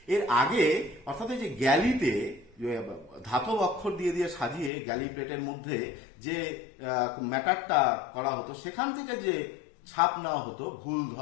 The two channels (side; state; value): right; drops out; at 4.7 s